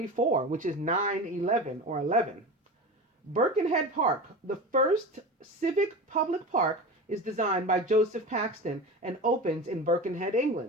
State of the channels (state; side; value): normal; both; correlation 0.28